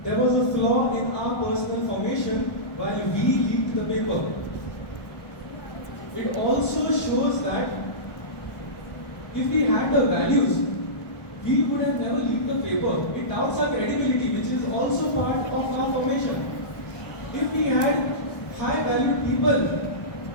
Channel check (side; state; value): right; late; 1.2 ms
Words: there was a flaw in our personal formation while we leaked the paper. It also shows that if we had the values, we would have never leaked the paper. It doubts our credibility, which is also part of our formation. If we had high valued people